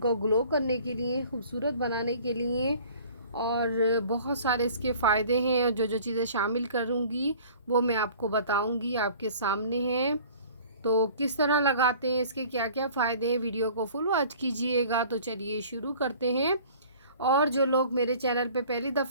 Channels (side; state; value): both; inverted; correlation -0.48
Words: ग्लो करने के लिए, खूबसूरत बनाने के लिए। और बहुत सारे इसके फ़ायदे हैं और जो जो चीज़ें शामिल करूँगी वो मैं आपको बताऊँगी, आपके सामने हैं। तो किस तरह लगाते हैं, इसके क्या क्या फ़ायदे हैं, वीडियो को फुल वॉच कीजिएगा। तो चलिए शुरू करते हैं। और जो लोग मेरे चैनल पे पहली